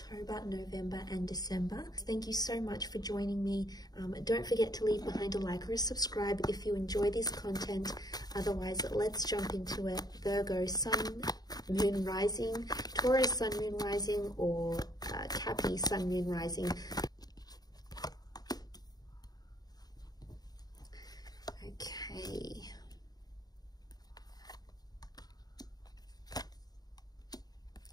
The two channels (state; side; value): late; right; 0.19 ms